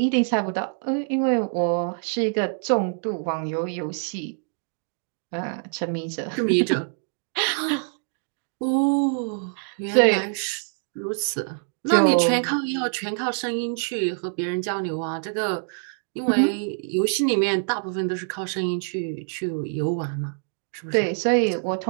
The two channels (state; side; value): silent; left; 62 dB below the other